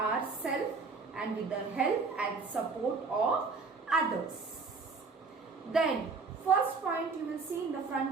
and with the help and support of others. Then, first point you will see in the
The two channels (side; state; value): left; quieter; 4.5 dB